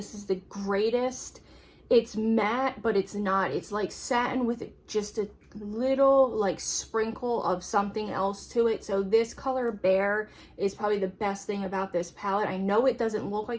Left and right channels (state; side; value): identical; both; correlation 1.00